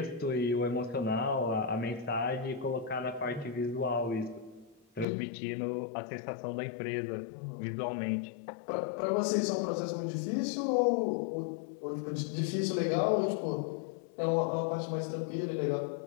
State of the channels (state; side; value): drops out; right; at 5.1 s